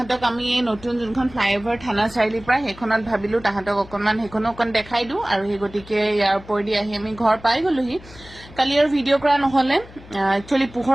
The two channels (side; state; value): left; noise; hum, 20 dB below the sound